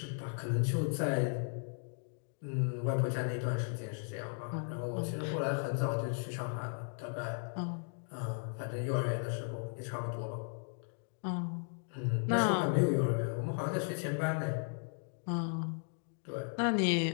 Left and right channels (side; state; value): right; silent; 54 dB below the other